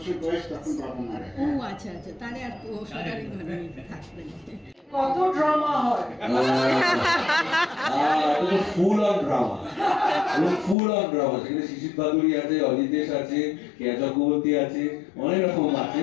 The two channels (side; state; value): right; drops out; at 10.8 s